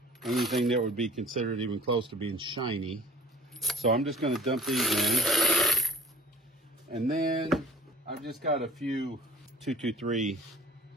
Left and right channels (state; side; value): normal; both; correlation 0.47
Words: anything that would be considered even close to being shiny. So I'm just going to dump these in. And then I've just got a few 223